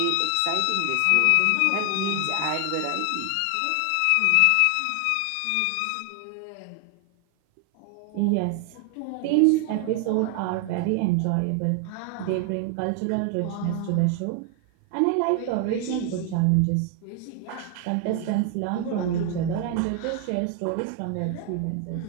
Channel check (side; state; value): both; different; correlation 0.00